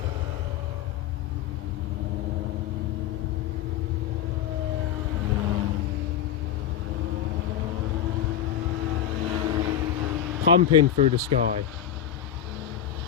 Pumping through the sky.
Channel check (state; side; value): quieter; right; 9.8 dB